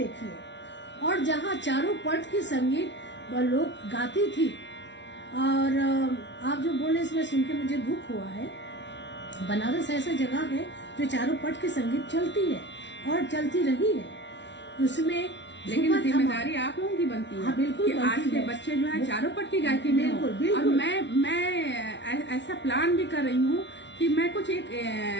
और जहाँ चारों पट की संगीत लोग गाती थी, और आप जो बोले इसमें सुन के मुझे दुख हुआ है। बनारस ऐसा जगह है जो चारों पट की संगीत चलती है और चलती रही है, उसमें लेकिन जिम्मेदारी आप लोगों की बनती है। हाँ, बिल्कुल कि आज के बच्चे जो है चारों पट की गायकी में हो। और मैं ऐसा प्लान भी कर रही हूँ कि मैं कुछ एक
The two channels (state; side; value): late; right; 0.52 ms